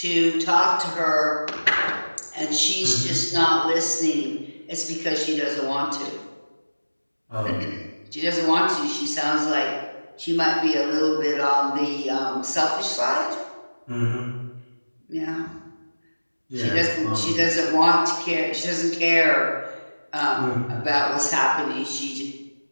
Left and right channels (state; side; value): inverted; both; correlation -1.00